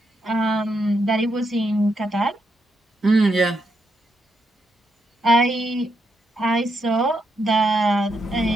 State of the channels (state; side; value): normal; both; correlation 0.80